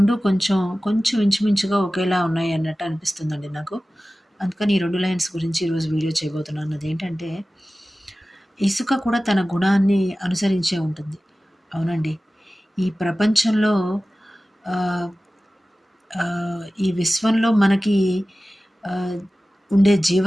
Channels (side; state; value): both; normal; correlation 0.96